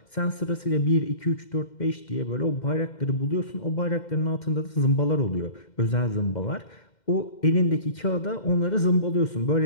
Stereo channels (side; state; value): right; late; 2.1 ms